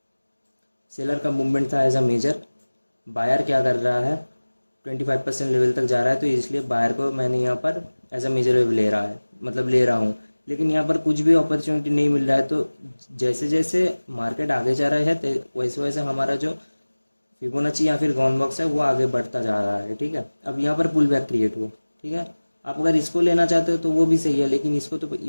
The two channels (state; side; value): inverted; both; correlation -1.00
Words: सेलर का मूवमेंट था एज अ मेजर, बायर क्या कर रहा है, 25% लेवल तक जा रहा है, तो इसलिए बायर को मैंने यहाँ पर एज अ मेजर वेव ले रहा है, मतलब ले रहा हूँ। लेकिन यहाँ पर कुछ भी अपॉर्चुनिटी नहीं मिल रहा है, तो जैसे जैसे मार्केट आगे जा रहा है वैसे वैसे हमारा जो फिबोनाची या फिर गॉन बॉक्स है वो आगे बढ़ता जा रहा है, ठीक है। अब यहाँ पर पुल बैक क्रिएट हुआ, ठीक है। आप अगर इसको लेना चाहते हो तो वो भी सही है, लेकिन इसको तो